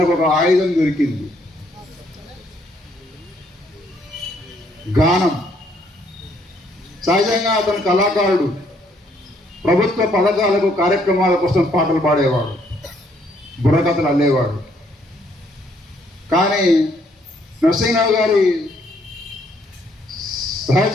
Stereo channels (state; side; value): normal; both; correlation 0.68